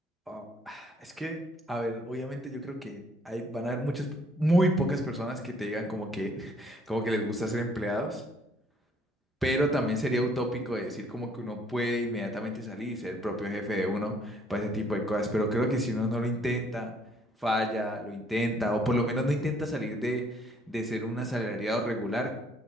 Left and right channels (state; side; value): normal; both; correlation 0.63